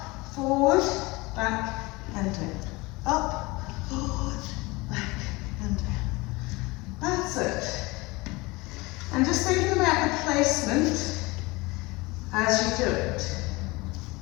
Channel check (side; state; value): right; quieter; 23.4 dB